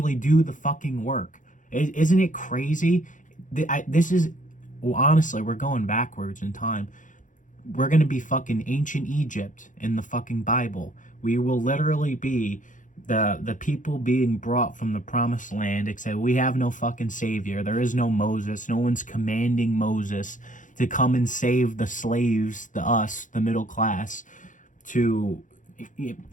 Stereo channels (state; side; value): late; right; 0.37 ms